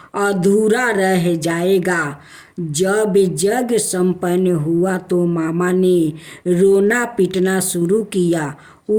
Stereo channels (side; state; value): both; identical; correlation 1.00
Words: अधूरा रह जाएगा। जब जग संपन्न हुआ तो मामा ने रोना पीटना शुरू किया।